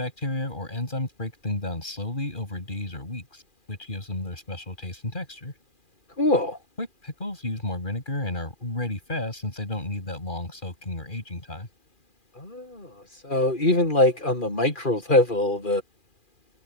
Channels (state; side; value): late; right; 2.4 ms